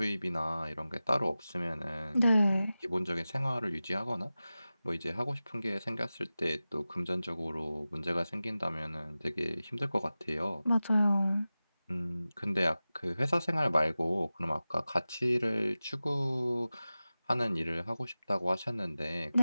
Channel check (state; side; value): inverted; both; correlation -0.96